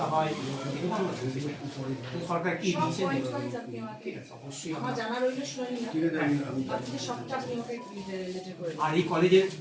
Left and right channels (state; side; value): identical; both; correlation 1.00